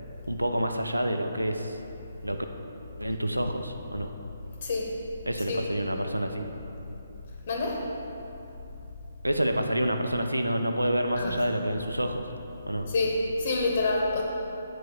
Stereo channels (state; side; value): inverted; both; correlation -0.85